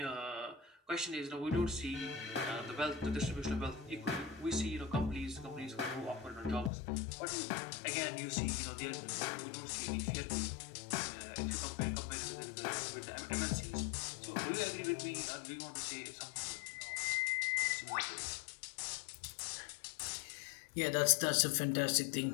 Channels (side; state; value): right; drops out; at 6.7 s